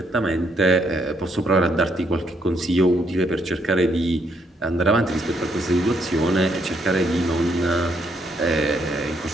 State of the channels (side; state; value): both; normal; correlation 0.73